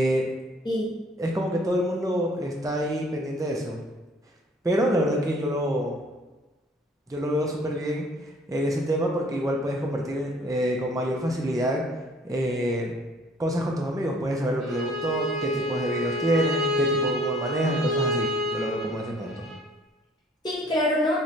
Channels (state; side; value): normal; both; correlation 0.57